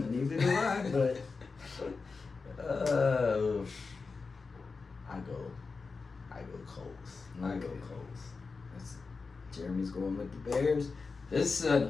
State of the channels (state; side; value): quieter; right; 4.5 dB